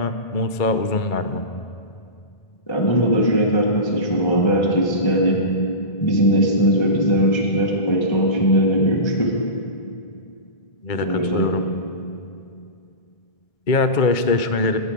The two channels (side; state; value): right; late; 2.2 ms